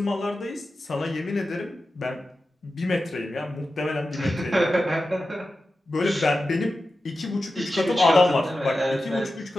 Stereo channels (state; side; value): normal; both; correlation 0.92